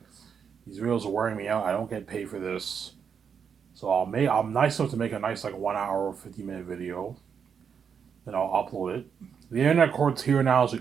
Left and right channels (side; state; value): left; quieter; 7.0 dB